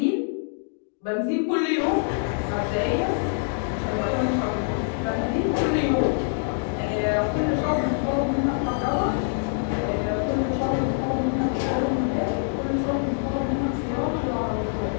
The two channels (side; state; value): right; silent; digital silence